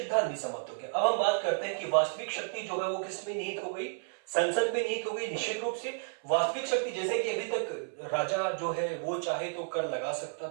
भी समाप्त हो गया। अब हम बात करते हैं कि वास्तविक शक्ति जो है वो किसमें निहित हो गई? संसद में निहित हो गई। निश्चित रूप से वास्तविक शक्ति, जैसे कि अभी तक राजा जो है वो चाहे तो कर लगा सकता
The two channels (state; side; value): silent; left; 57 dB below the other